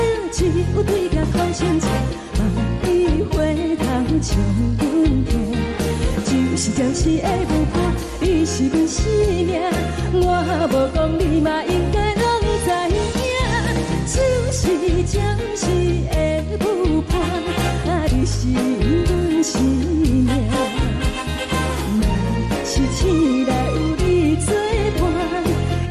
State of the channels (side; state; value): both; identical; correlation 1.00